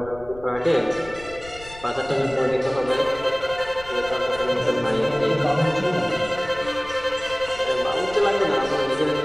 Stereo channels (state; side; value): noise; left; rumble, 18 dB below the sound